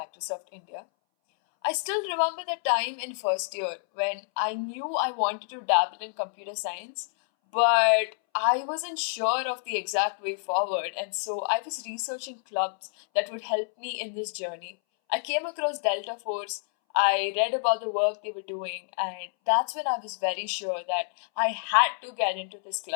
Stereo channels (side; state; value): right; silent; 59 dB below the other